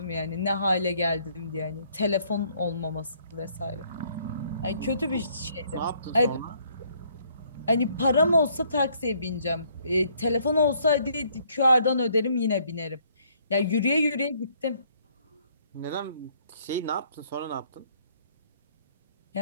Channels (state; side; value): inverted; both; correlation -0.65